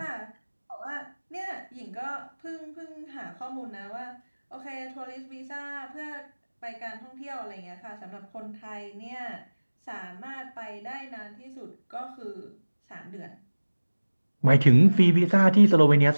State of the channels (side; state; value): both; inverted; correlation -1.00